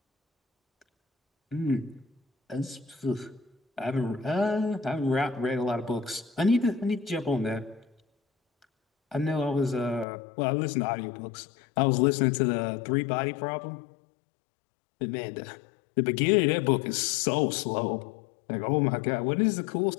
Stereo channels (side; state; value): right; drops out; at 10.1 s